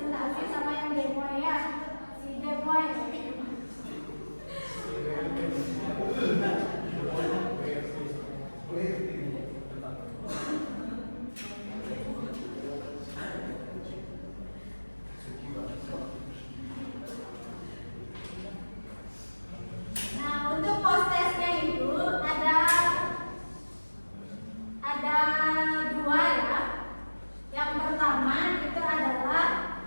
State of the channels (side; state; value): both; inverted; correlation -1.00